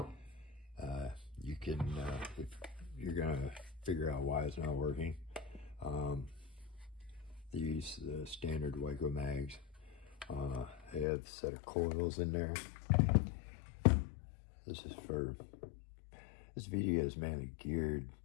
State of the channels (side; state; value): right; drops out; at 11.1 s